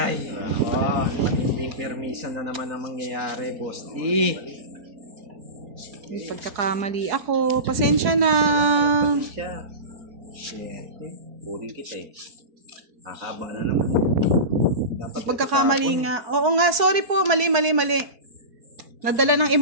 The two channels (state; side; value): late; left; 4.6 ms